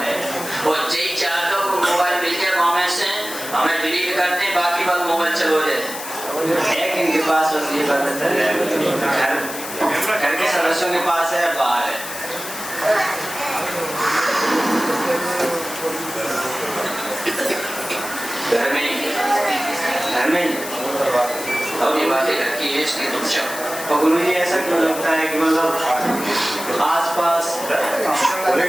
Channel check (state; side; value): noise; left; hiss, 9 dB below the sound